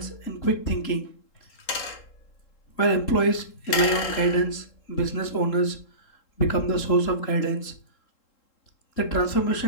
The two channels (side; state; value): right; late; 3.8 ms